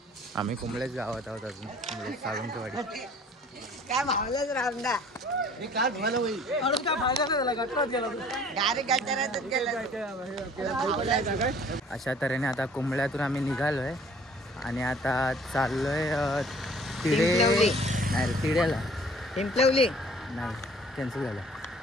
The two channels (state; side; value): normal; both; correlation 0.53